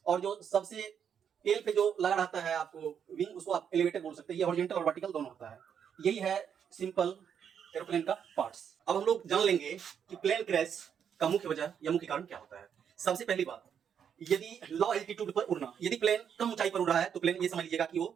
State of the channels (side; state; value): left; quieter; 8.0 dB